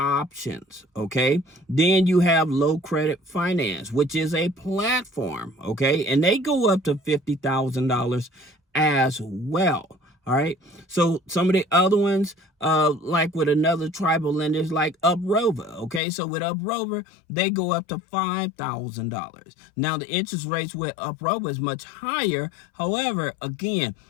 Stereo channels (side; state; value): right; drops out; at 16.0 s